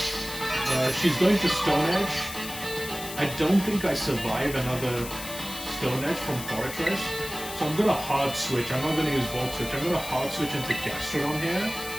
She's going to Stone Edge. I don't think I survive another Stone Edge from Fortress, so I'm going to hard switch. I'm not going to use Volt Switch. I'm going to hard switch into Gastrodon here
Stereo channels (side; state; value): left; noise; hiss, 10 dB below the sound